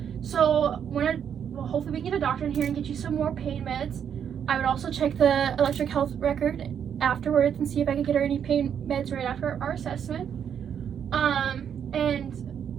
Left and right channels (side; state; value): left; quieter; 8.3 dB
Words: So hopefully we can get a doctor in here and get you some more pain meds. I would also check the electric health record afterwards and see if I could get her any pain meds right after our assessment. And